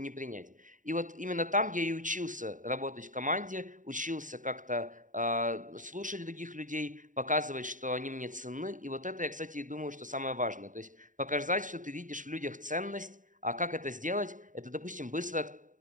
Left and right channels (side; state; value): left; late; 0.38 ms